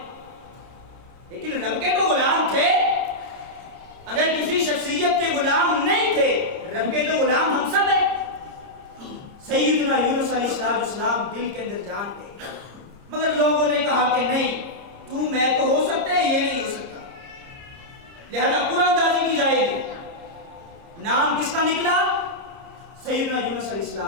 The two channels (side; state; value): left; late; 30 ms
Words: لیکن رب کے تو غلام تھے۔ اگر کسی شخصیت کے غلام نہیں تھے، رب کے تو غلام ہم سب ہیں۔ سیدنا یونس علیہ السلام دل کے اندر جان گئے، مگر لوگوں نے کہا کہ نہیں، تو میں تو ہو سکتے ہیں، یہ نہیں ہو سکتا، لہذا قرآن دازی کی جائے گی۔ نام کس کا نکلا؟ سیدنا یونس علیہ